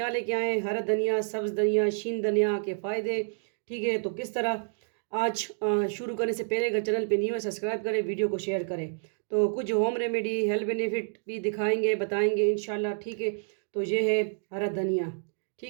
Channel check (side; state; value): left; silent; digital silence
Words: लेके आए? हरा धनिया, सब्ज़ धनिया, शीन धनिया के फ़ायदे। ठीक है, तो किस तरह आज शुरू करने से पहले अगर चैनल पे न्यू है सब्सक्राइब करें, वीडियो को शेयर करें। तो कुछ होम रेमेडी, हेल्थ बेनिफिट भी दिखाएंगे, बताएंगे इंशाल्लाह। ठीक है, तो ये है हरा धनिया।